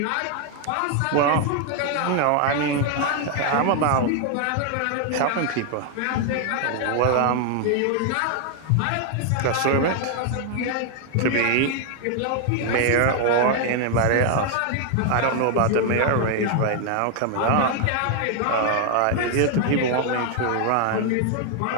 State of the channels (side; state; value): both; different; correlation 0.00